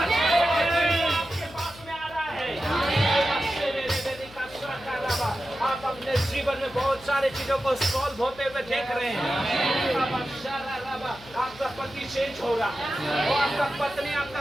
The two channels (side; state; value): left; noise; hum, 21 dB below the sound